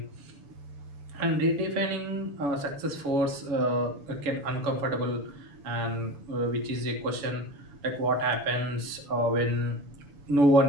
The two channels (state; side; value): late; left; 7.1 ms